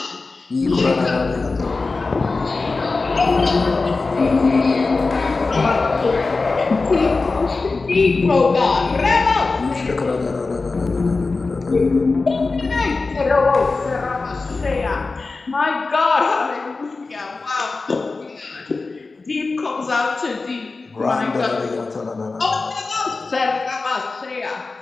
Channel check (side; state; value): right; quieter; 3.8 dB